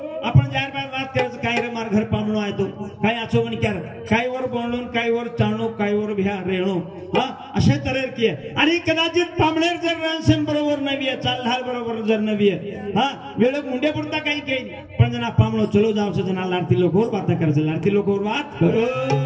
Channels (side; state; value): both; identical; correlation 1.00